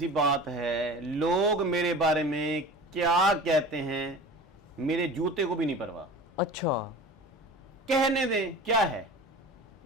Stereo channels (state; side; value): normal; both; correlation 0.37